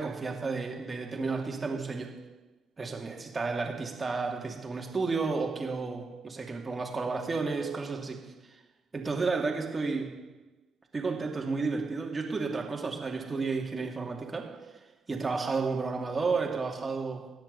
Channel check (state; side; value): quieter; left; 3.8 dB